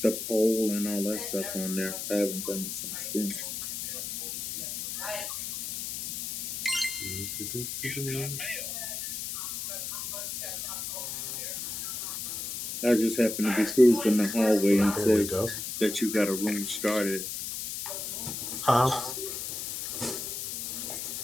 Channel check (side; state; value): left; noise; hiss, 5 dB below the sound